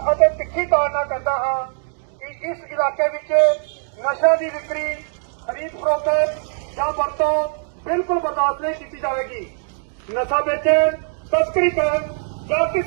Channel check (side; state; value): left; silent; digital silence